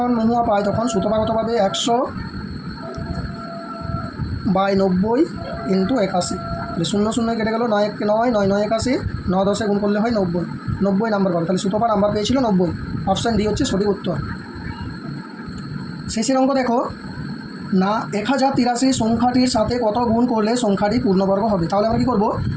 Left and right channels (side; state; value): both; identical; correlation 1.00